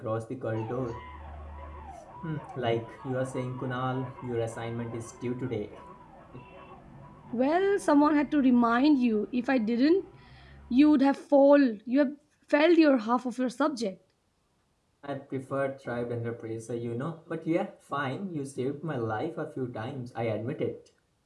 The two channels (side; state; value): both; identical; correlation 1.00